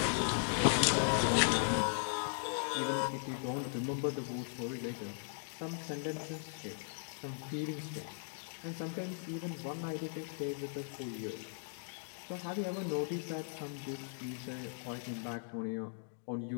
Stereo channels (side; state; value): right; silent; digital silence